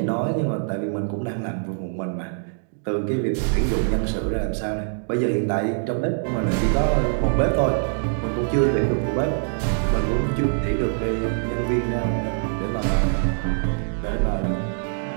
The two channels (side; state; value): left; silent; digital silence